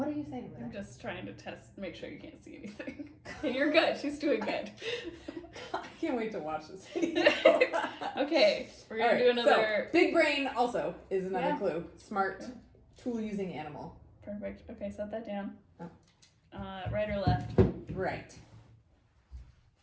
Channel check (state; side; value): identical; both; correlation 1.00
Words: are you saying there? I'm just trying to make sure you can't see anything. And you're good. She's doing good. I can't wait to watch this video. Okay, we're going to do another... So, big brain also is another clue. Smart, yeah. tool-using animal. Perfect. Okay, set that down. Oh. Right or left? Right.